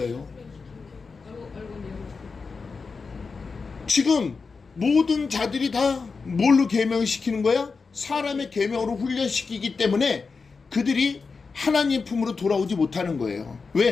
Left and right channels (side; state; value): right; quieter; 4.7 dB